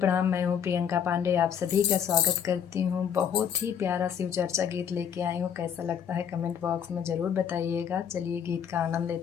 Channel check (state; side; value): quieter; right; 8.1 dB